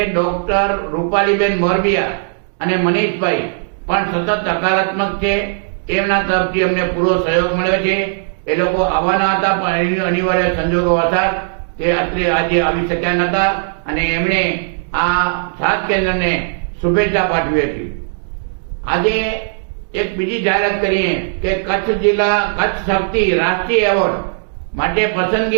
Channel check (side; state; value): left; silent; digital silence